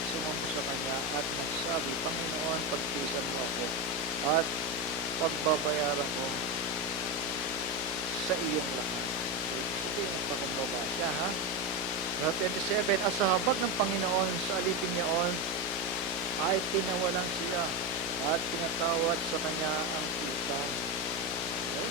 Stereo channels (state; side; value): noise; right; hum, 18 dB below the sound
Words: sumamba sa kanya at nagsabi, Panginoon, pagtiisan mo ako at pagbabayaran ko sa iyong lahat. Sige, nagpakumbaba siya, ha? Sa 27, at sa habag ng Panginoon sa alipin niyaon ay tinawalan siya at pinatawad sa kanya ang utang. Okay?